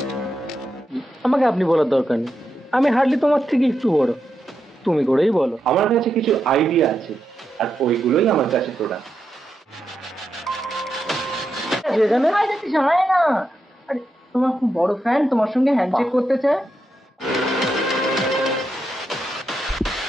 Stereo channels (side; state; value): both; normal; correlation 0.85